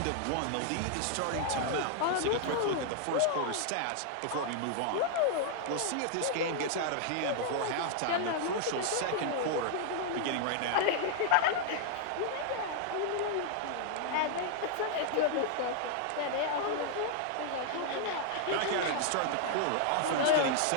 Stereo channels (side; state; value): both; different; correlation 0.00